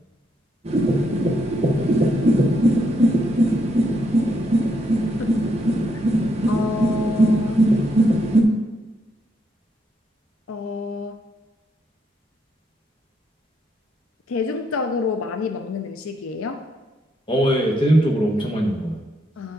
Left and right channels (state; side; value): normal; both; correlation 0.77